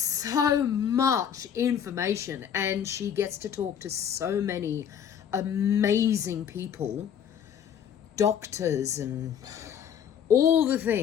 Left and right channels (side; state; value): right; quieter; 8.6 dB